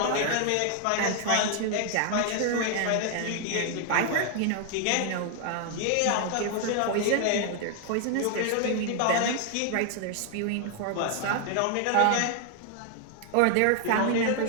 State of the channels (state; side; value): different; both; correlation 0.00